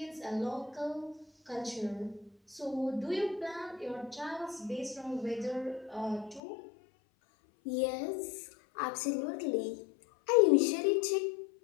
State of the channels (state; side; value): drops out; right; at 6.4 s